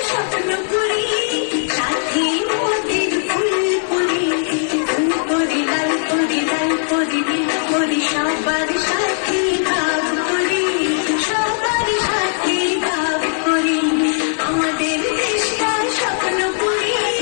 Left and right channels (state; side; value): silent; right; digital silence